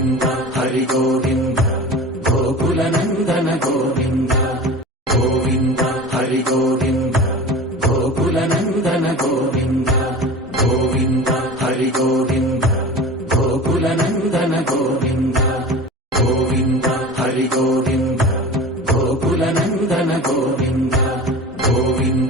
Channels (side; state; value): both; normal; correlation 0.35